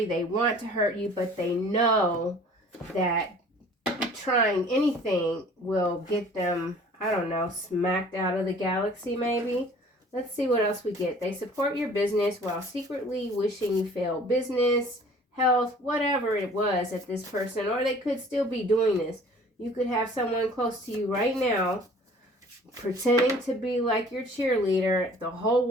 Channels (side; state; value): both; normal; correlation 0.50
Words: they want to hurt you, but they know that trying anything will get them, I don't know, smacked out of the galaxy maybe. Let's see what else we get. They support your business while secretly wishing you fail. Business, health, whatever it was at this person, or they could still be doing this. You could have someone close to you right now pretending to be like your cheerleader the whole